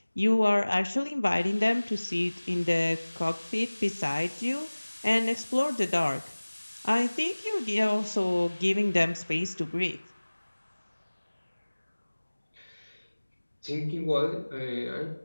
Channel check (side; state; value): both; inverted; correlation -1.00